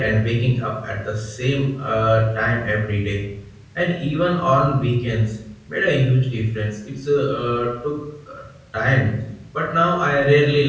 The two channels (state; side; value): identical; both; correlation 1.00